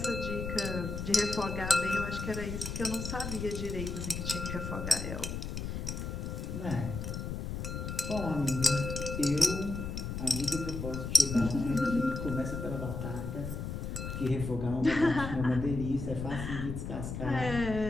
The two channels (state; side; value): noise; left; rumble, 5 dB below the sound